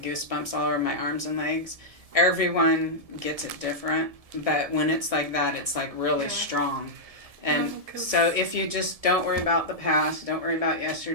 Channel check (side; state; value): left; late; 1.6 ms